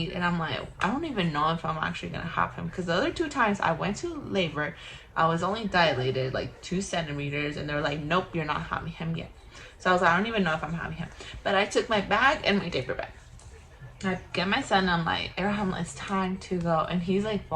and I'm like, I don't even know if I'm actually gonna have him, because the other 2 times I went to labor, I was only dilated like 2 centimeters, and they're like, nope, you're not having him yet. So I was like, I don't even know if I'm having him. But I took my bag and my diaper bag. I get my son, I'm like, Abraham, it's time to go. And he's like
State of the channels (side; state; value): both; identical; correlation 1.00